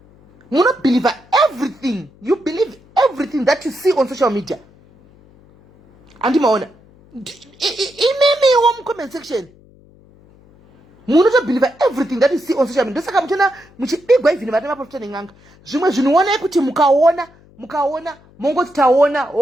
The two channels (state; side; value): noise; left; hum, 28 dB below the sound